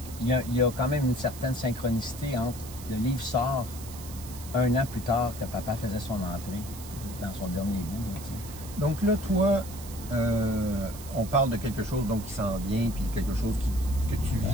il y a quand même une certaine synchronicité entre le livre sort 1 an plus tard que papa faisait son entrée dans son dernier bout. Là, donc là, toi, on parle de quelque chose donc, qui s'en vient, puis quelque chose que tu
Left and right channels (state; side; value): noise; right; hiss, 15 dB below the sound